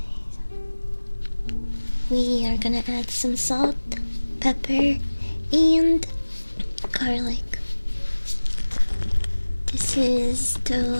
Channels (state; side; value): inverted; both; correlation -1.00